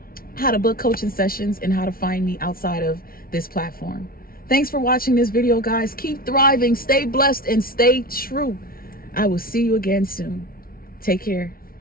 how to book coaching sessions, and how to find me outside of this platform. Thanks for watching this video, guys. Keep thriving, stay blessed, and stay true. I will see you again soon. Take care.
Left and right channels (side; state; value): right; late; 0.43 ms